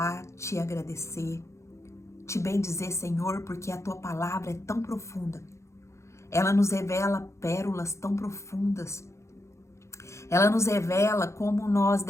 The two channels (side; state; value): right; late; 0.14 ms